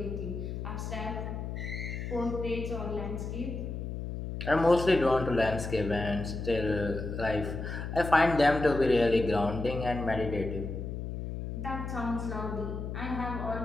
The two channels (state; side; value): noise; left; hum, 5 dB below the sound